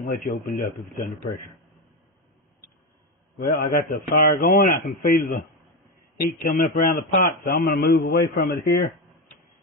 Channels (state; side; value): normal; both; correlation 0.14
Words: let you open it up if it's under pressure. Well, I got the fire going. I can feel the heat coming up around the pot, so I'm going to move away from it here.